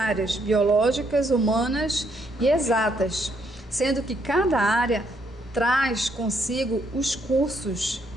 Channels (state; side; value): normal; both; correlation 0.72